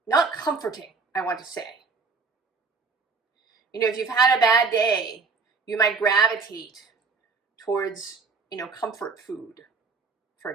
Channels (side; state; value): left; quieter; 4.5 dB